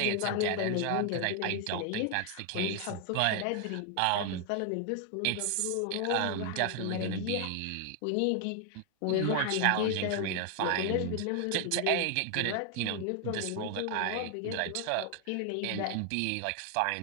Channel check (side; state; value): both; different; correlation 0.00